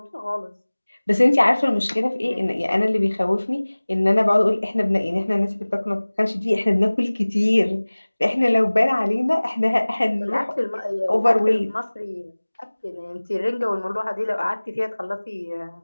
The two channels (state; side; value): inverted; both; correlation -1.00